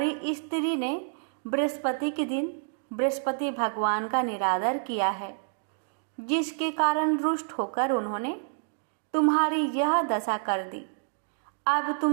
स्त्री ने बृहस्पति के दिन बृहस्पति भगवान का निरादर किया है, जिसके कारण रुष्ट होकर उन्होंने तुम्हारी यह दशा कर दी। अब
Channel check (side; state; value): left; silent; digital silence